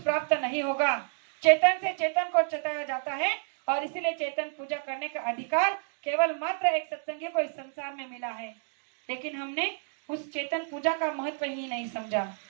नहीं होगा। चेतन से चेतन को चेताया जाता है और इसीलिए चेतन पूजा करने का अधिकार केवल मात्र एक सत्संगी को इस संसार में मिला है। लेकिन हमने उस चेतन पूजा का महत्व ही नहीं समझा।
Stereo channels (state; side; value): silent; left; 58 dB below the other